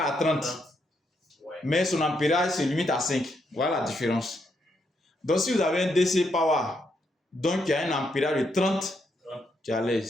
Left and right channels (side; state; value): both; normal; correlation 0.78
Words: 30. Mais son ampérage se limite à 5. Voilà la différence. Donc, si vous avez un DC Power, donc il y a un ampérage de 30, tu es à